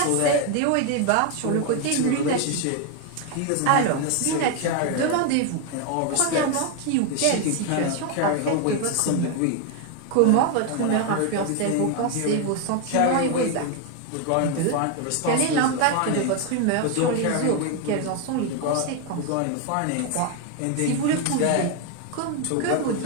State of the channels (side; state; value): both; different; correlation 0.01